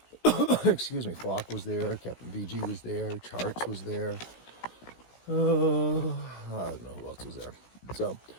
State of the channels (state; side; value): late; right; 16 ms